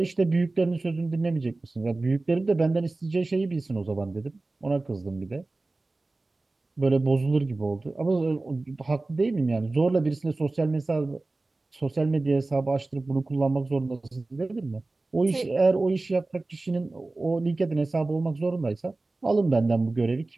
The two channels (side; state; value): left; quieter; 3.2 dB